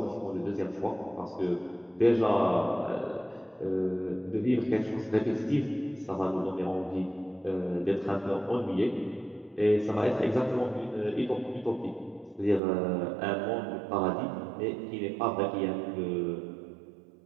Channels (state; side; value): drops out; left; at 12.6 s